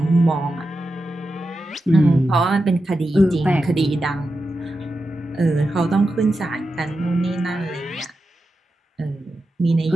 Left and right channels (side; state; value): both; normal; correlation 0.90